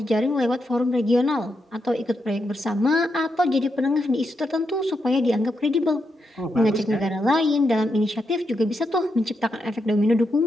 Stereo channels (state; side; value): normal; both; correlation 0.83